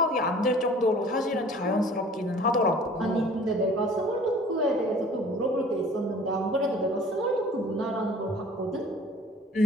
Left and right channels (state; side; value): normal; both; correlation 0.48